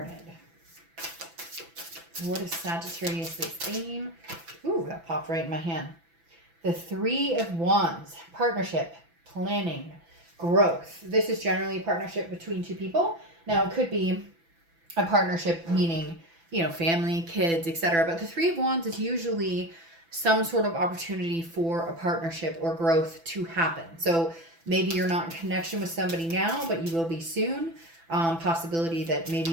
What is Sagittarius' theme? Ooh, that popped right in my hand. The Three of Wands. Partnership, planning, growth. This is generally a partnership between two people. Now, it could be a partnership meaning, you know, family, kids, etc. But the Three of Wands is usually some sort of opportunity for a partnership or growth to happen. So maybe you're not in connection with somebody now, but you will be soon. Possibility that maybe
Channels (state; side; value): late; left; 6.0 ms